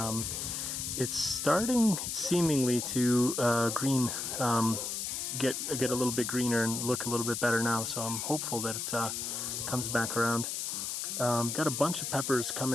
It's starting seemingly to green, get a little bit greener and look a little bit better now, so I'm hopeful that it comes back around. Got a bunch of peppers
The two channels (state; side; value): noise; left; hiss, 3 dB below the sound